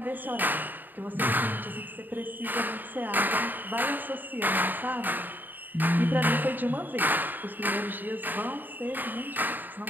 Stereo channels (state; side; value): late; left; 0.090 ms